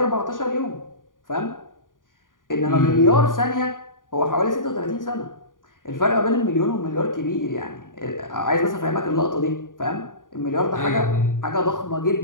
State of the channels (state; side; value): late; right; 0.89 ms